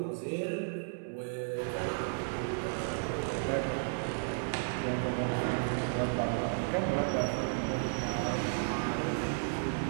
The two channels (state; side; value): silent; left; digital silence